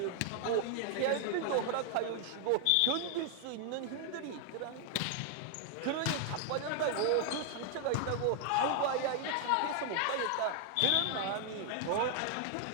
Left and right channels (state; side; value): different; both; correlation 0.00